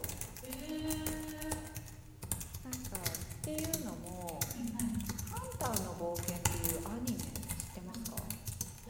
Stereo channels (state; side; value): identical; both; correlation 1.00